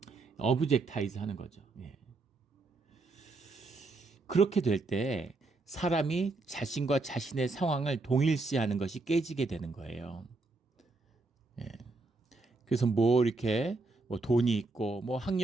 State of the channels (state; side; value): quieter; left; 3.4 dB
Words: 어브젝타이즈 하는 거죠. 그렇게 될 때 사람이 자신과 자신의 상황을 동일시하는 것이 깨지게 되는 거예요. 그래서 이렇게 돈이 있고